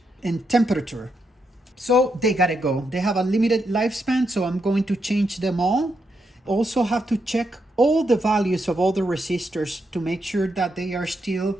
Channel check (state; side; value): normal; both; correlation 0.81